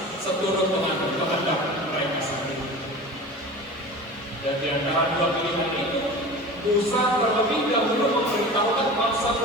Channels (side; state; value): both; normal; correlation 0.35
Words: seturut dengan kehendak mereka sendiri. Dan di antara dua pilihan itu, Musa terlebih dahulu memberitahukan